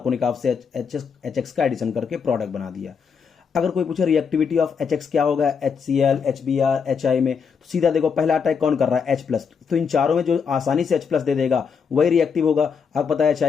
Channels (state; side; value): quieter; right; 6.2 dB